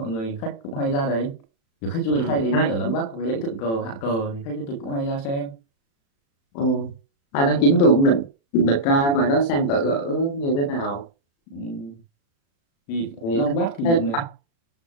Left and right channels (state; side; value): late; right; 36 ms